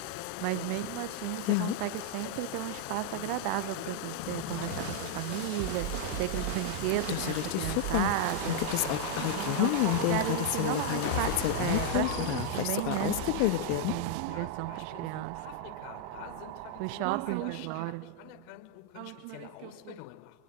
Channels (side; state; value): both; different; correlation 0.00